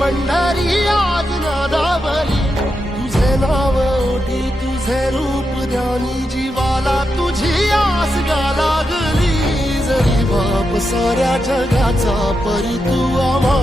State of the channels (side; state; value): both; normal; correlation 0.86